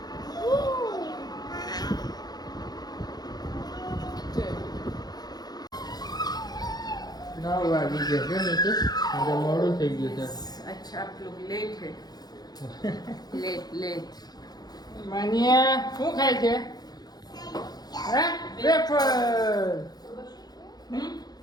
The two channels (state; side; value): late; right; 0.19 ms